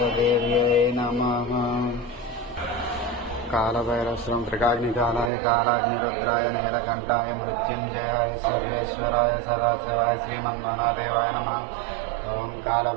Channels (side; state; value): left; drops out; at 5.3 s